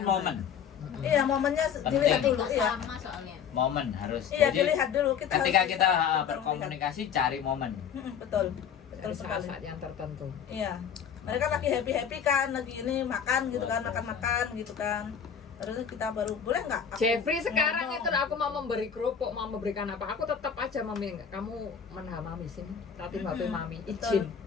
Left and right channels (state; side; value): quieter; right; 7.6 dB